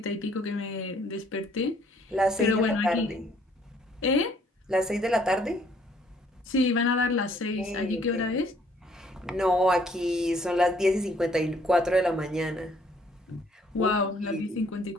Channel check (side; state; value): both; normal; correlation 0.63